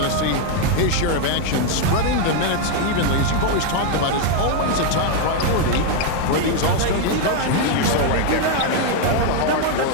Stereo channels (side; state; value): both; different; correlation 0.01